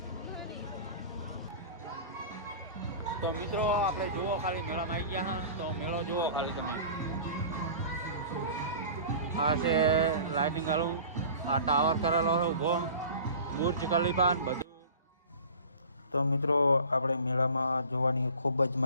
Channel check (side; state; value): both; inverted; correlation -0.41